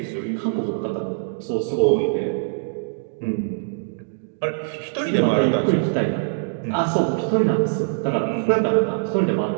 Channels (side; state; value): left; silent; digital silence